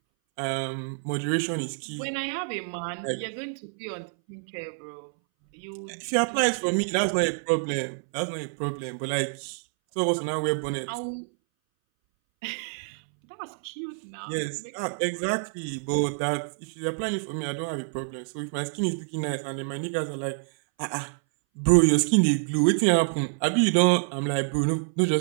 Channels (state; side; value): silent; left; 60 dB below the other